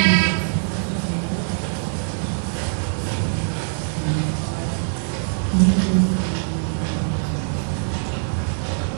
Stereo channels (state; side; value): silent; left; digital silence